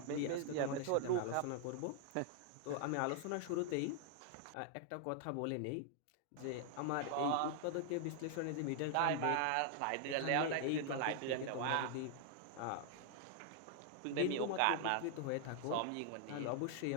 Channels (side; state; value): both; different; correlation 0.00